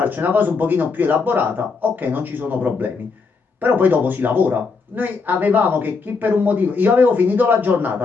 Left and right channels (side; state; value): right; quieter; 4.6 dB